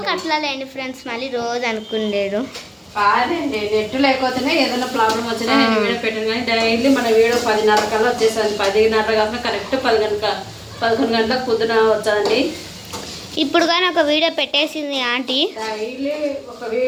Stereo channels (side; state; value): both; identical; correlation 1.00